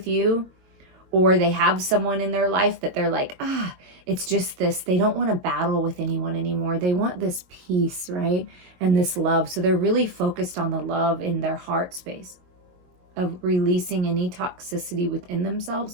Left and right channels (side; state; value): left; late; 22 ms